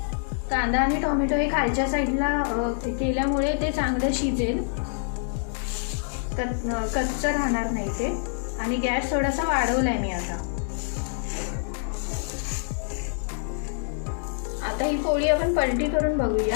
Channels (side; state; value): right; silent; 61 dB below the other